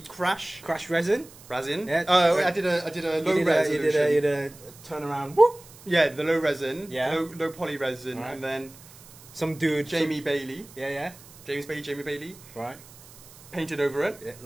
crash resin. Yeah. Yeah. I did a low You resolution. did a turnaround. Whoop. Yeah, the low resin. Yeah. Low poly resin. Alright. And then Some dude. Jamie Bailey. Yeah. Jamie Bailey. Right. Painted over it. Yeah,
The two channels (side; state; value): right; noise; hiss, 21 dB below the sound